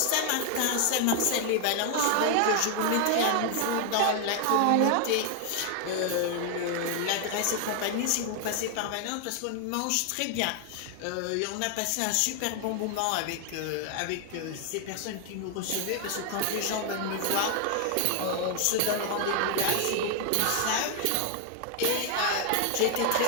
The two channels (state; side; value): different; both; correlation 0.00